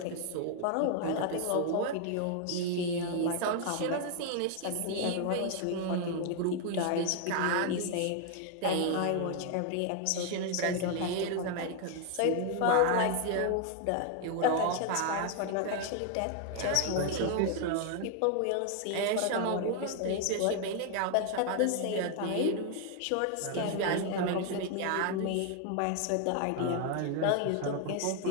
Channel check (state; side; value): different; both; correlation 0.00